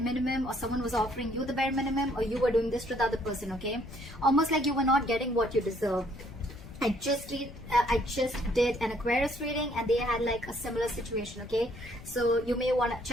or someone was offering you the bare minimum, or you were doing this to the other person, okay? Almost like you were not getting what you deserve. I just did an Aquarius reading, and they had like a similar situation, okay? So you may want to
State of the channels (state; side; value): noise; left; rumble, 15 dB below the sound